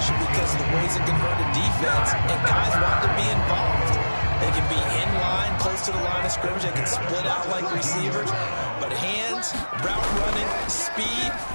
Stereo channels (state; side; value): inverted; both; correlation -1.00